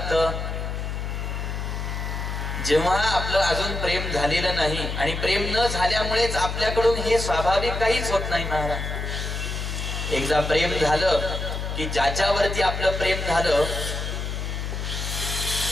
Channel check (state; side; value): noise; left; hum, 4 dB below the sound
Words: जेव्हा आपलं अजून प्रेम झालेलं नाही. आणि प्रेम न झाल्यामुळेच आपल्याकडून हे स्वाभाविक काहीच होत नाही महाराज. एकदा प्रेम झालं की ज्याच्यावरती आपलं प्रेम झालं